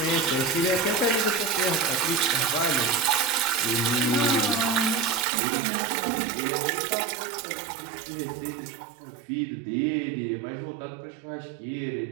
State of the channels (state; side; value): drops out; left; at 5.2 s